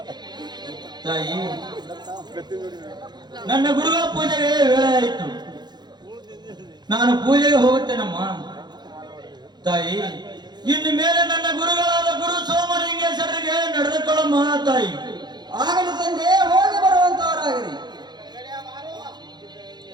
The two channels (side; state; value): left; late; 0.21 ms